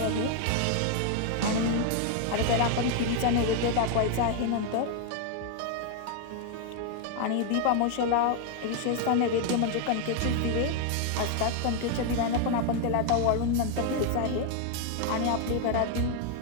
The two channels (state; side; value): different; both; correlation 0.01